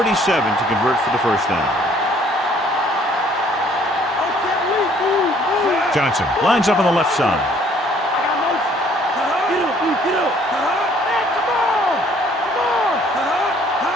to convert for the first down. Johnson lines up on the left side.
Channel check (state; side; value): normal; both; correlation 0.60